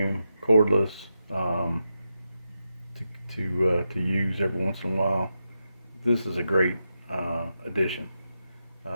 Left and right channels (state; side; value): inverted; both; correlation -0.87